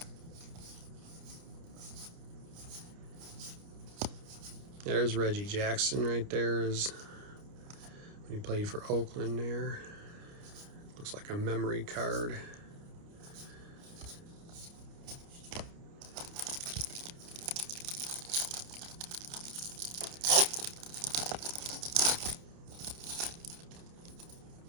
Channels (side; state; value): left; late; 29 ms